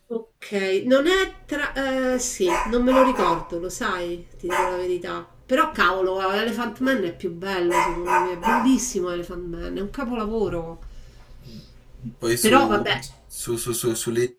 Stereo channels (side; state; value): both; identical; correlation 1.00